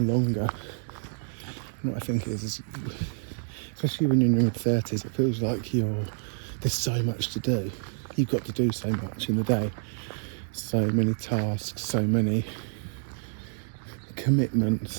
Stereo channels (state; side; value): silent; left; digital silence